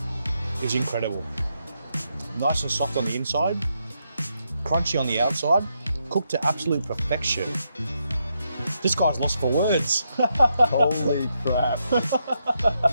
is incredible. Nice and soft on the inside, crunchy on the outside, cooked to absolute perfection. This guy's lost for words. Holy crap.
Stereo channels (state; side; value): inverted; both; correlation -0.81